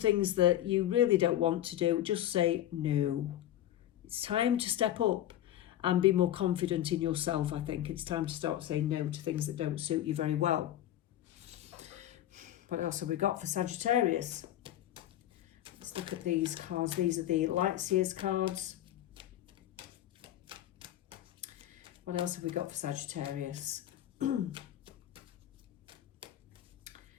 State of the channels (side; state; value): right; quieter; 12.7 dB